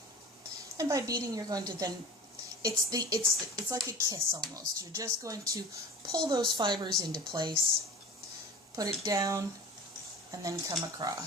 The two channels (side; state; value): both; normal; correlation 0.38